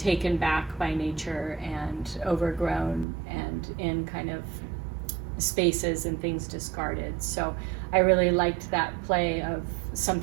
back by nature and overgrown and in kind of spaces and things discarded. So I really liked that play of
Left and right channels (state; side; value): drops out; left; at 3.1 s